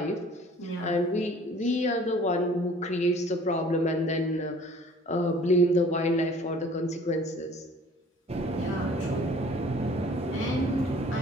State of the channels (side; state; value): both; normal; correlation 0.51